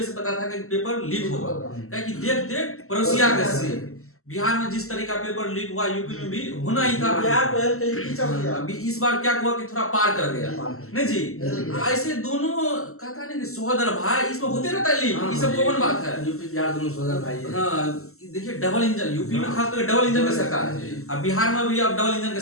से पता था कि पेपर लीक होगा, क्योंकि देख देख पड़ोसिया के से बिहार में जिस तरह का पेपर लीक हुआ यूपी में भी होना ही था। अभी इस बार क्या हुआ कि थोड़ा पार कर गया, नहीं जी। ऐसे दोनों कहता है कि सोहदर भाई, इसमें होते रहता है लीक, ये सब कॉमन बात है। यूपी बिहार दोनों सोहदर भाई है। हाँ, देखिए डबल इंजन यूपी में खास करके डबल इंजन की सरकार है। अब बिहार में भी अब डबल इंजन की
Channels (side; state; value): right; late; 0.63 ms